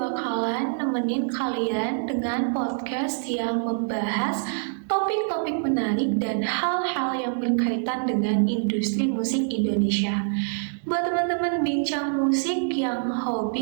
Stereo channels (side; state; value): left; silent; digital silence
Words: nemenin kalian dengan podcast yang membahas topik-topik menarik dan hal-hal yang berkaitan dengan industri musik Indonesia. Buat teman-teman bincang musik yang